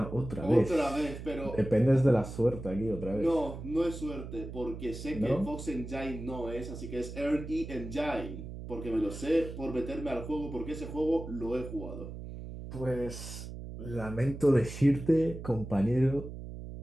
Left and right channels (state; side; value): noise; right; hum, 10 dB below the sound